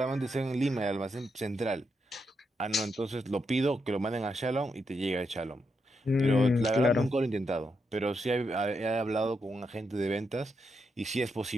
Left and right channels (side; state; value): both; normal; correlation 0.82